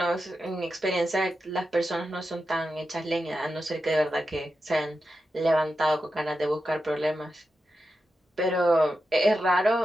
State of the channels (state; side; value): normal; both; correlation 0.90